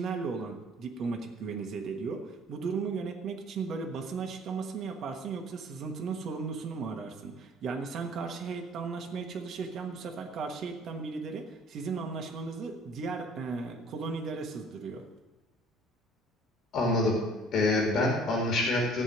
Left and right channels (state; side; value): normal; both; correlation 0.53